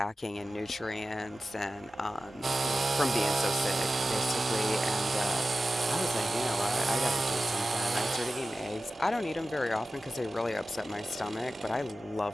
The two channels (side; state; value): both; normal; correlation 0.95